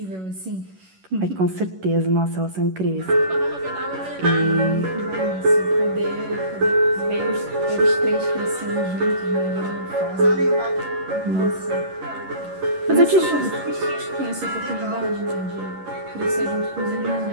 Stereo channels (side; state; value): left; late; 11 ms